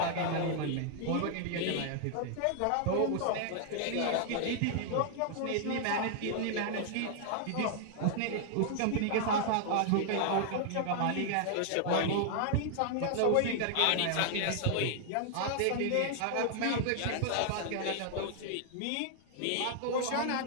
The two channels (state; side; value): different; both; correlation 0.00